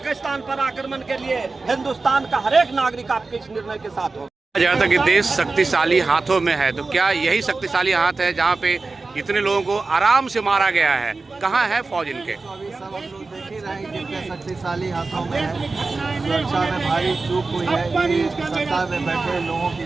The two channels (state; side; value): quieter; left; 3.8 dB